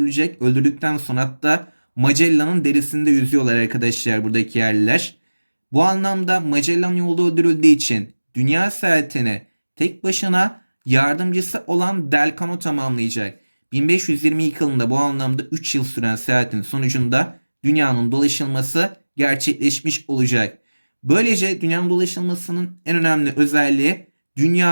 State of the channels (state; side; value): inverted; both; correlation -1.00